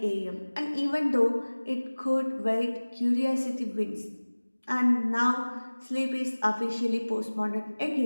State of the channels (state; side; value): inverted; both; correlation -1.00